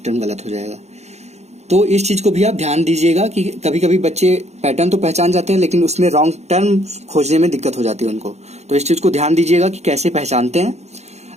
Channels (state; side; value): late; left; 0.32 ms